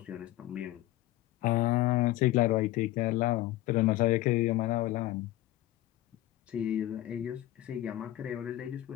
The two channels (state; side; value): quieter; right; 15.8 dB